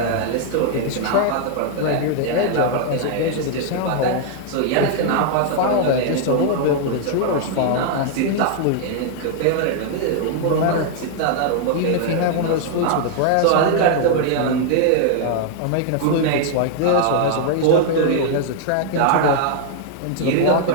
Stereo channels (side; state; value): both; different; correlation 0.00